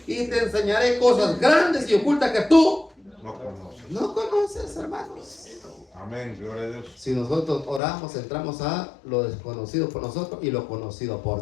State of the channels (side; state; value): right; drops out; at 7.8 s